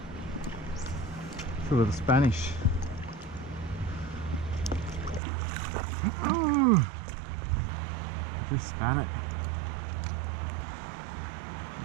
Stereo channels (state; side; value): drops out; left; at 5.2 s